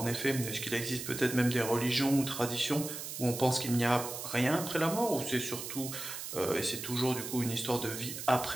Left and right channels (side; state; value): right; noise; hiss, 7 dB below the sound